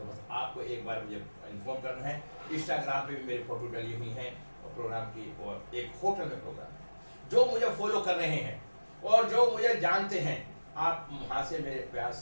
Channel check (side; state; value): both; inverted; correlation -1.00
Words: बस आपको एक बार मुझे इन्फॉर्म करना है। इंस्टाग्राम पे भी मेरी फोटो डली हुई है प्रोग्राम की, और एक होटल में प्रोग्राम है। जो मुझे फॉलो कर रहे हैं और जो मुझे जानते हैं, आप वहां से मेरे पास